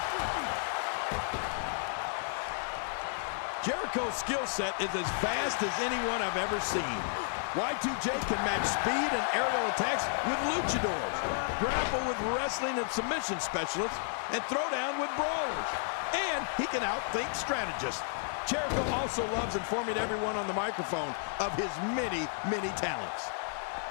Jericho's skill set is as vast as anyone I've ever seen. Y2J can match speed and aerial attacks with luchadors, grapple with wrestling and submission specialists, and throw down with brawlers. And he can outthink strategists. Jericho also loves informing everyone on the microphone of his many, many talents.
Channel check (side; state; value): right; silent; digital silence